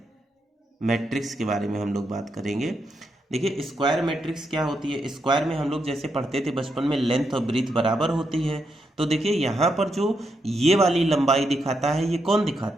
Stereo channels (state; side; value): normal; both; correlation 0.82